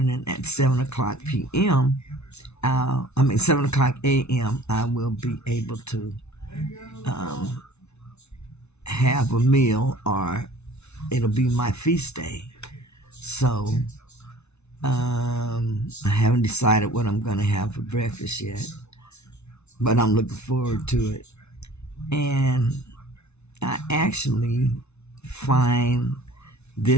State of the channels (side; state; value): right; late; 0.81 ms